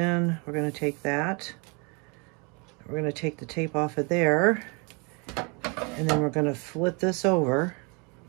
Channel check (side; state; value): left; quieter; 32.2 dB